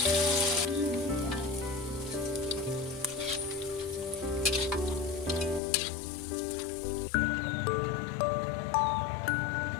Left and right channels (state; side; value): drops out; right; at 5.6 s